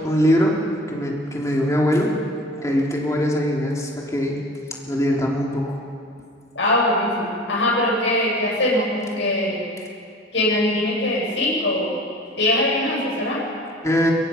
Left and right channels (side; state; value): both; normal; correlation 0.44